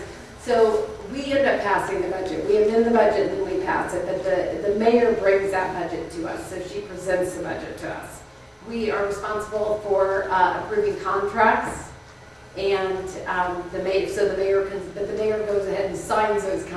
So we end up passing the budget. We amend the budget and then we pass it, but the mayor brings that budget to us, so she presents the budget to us. We are responsible for approving contracts And the mayor goes ahead and signs those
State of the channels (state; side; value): identical; both; correlation 1.00